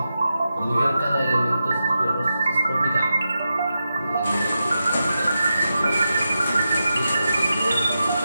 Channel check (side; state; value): both; inverted; correlation -0.89